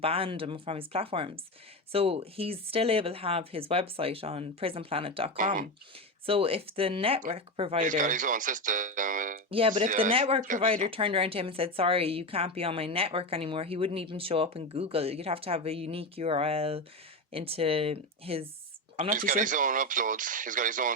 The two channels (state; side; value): normal; both; correlation 0.17